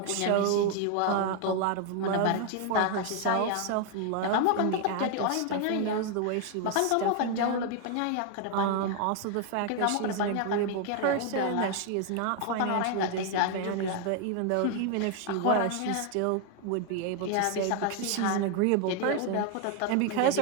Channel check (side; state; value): both; different; correlation 0.00